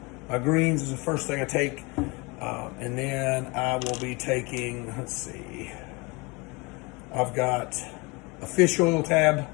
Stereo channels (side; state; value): right; quieter; 27.1 dB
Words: greens is the first thing I take. And then I will be taking, I've got a fish oil tab.